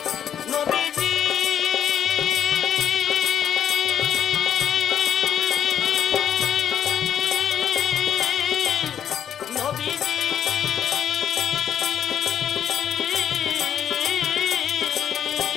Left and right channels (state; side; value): quieter; right; 9.1 dB